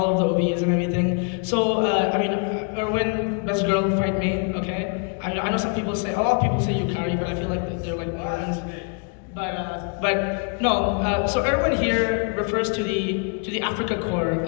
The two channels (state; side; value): quieter; right; 38.5 dB